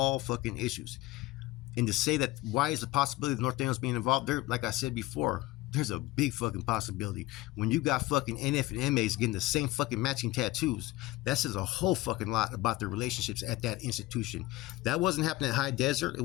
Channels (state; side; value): quieter; right; 18.1 dB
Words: issues. And to say that why is the possibility of North Daniels being involved there, like I said before, There's a big fucking possibility. When you got fucking NF and MAs getting the same fucking matching tattoos, that says a whole fucking lot about their relationships at that institution. That wasn't happening at High Desert. It